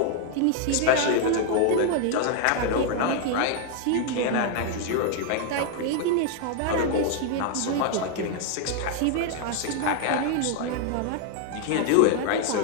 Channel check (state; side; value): different; both; correlation 0.00